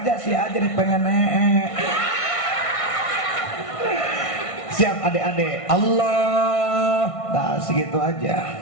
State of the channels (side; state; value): right; late; 1.5 ms